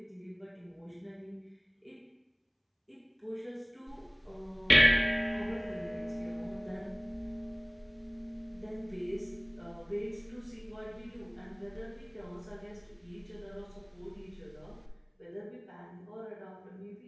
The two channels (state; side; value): identical; both; correlation 1.00